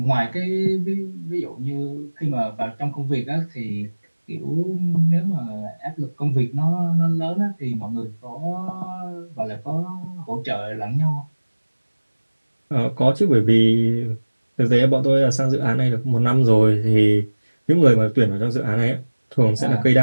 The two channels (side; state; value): both; inverted; correlation -1.00